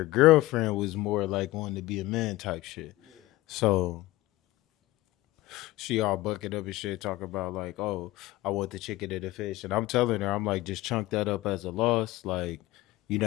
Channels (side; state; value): right; quieter; 18.1 dB